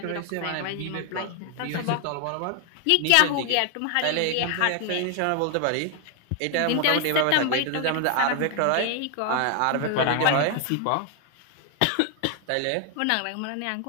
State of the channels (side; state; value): both; different; correlation 0.00